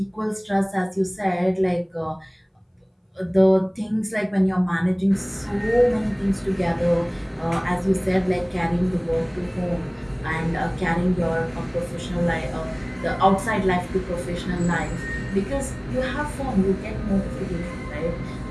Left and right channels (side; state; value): both; identical; correlation 1.00